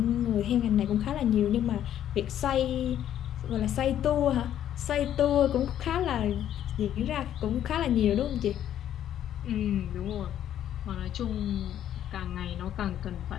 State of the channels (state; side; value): quieter; right; 10.8 dB